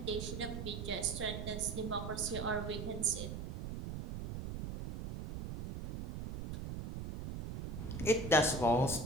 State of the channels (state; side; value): noise; right; rumble, 6 dB below the sound